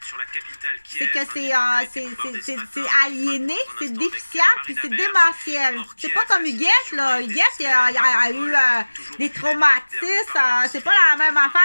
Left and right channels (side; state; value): both; inverted; correlation -1.00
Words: C'est que c'est aliéné, c'est déficient, puis c'est démentiel. C'est pas comme Huguette, là. Huguette, il a eu des traumatismes. C'est pas la même affaire,